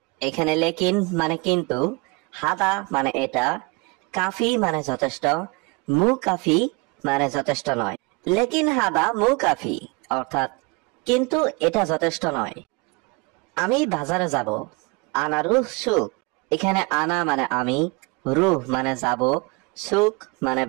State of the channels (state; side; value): quieter; left; 27.7 dB